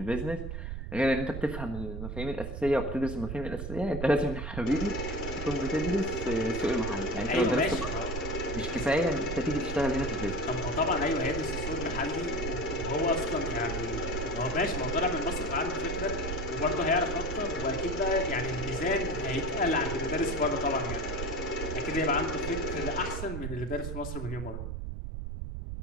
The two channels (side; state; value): right; noise; rumble, 5 dB below the sound